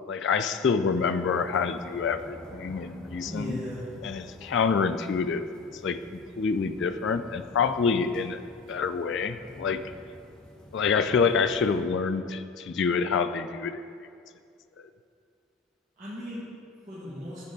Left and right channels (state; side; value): quieter; right; 4.9 dB